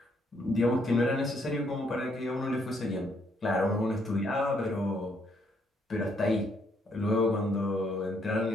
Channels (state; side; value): normal; both; correlation 0.72